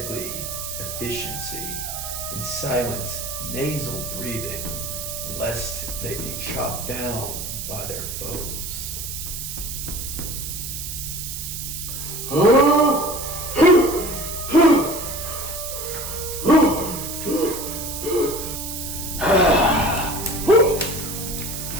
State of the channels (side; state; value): right; noise; hiss, 6 dB below the sound